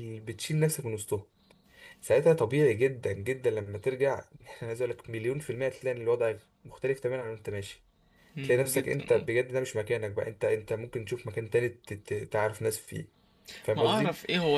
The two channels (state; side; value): identical; both; correlation 1.00